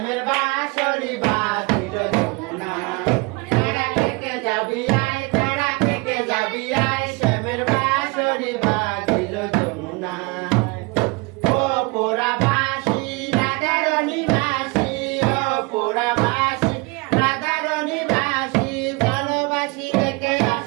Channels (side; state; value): left; quieter; 27.3 dB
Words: বাঁশরি বাজিল যমুনা, তারা থেকে যাবি আয়, তারা থেকে যাবি আয়, শ্যামের বাঁশরি বাজিল যমুনা। ও পোড়া বাঁশি রাধারণী বাঁশি, ও পোড়া বাঁশি রাধারণী বাঁশি, ভালোবাসি রেখে